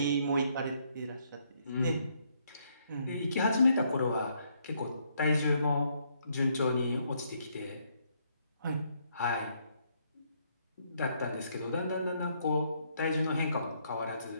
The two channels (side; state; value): both; inverted; correlation -0.72